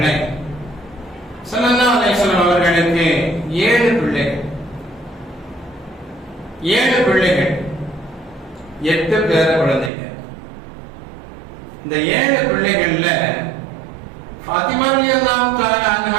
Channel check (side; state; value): left; drops out; at 9.9 s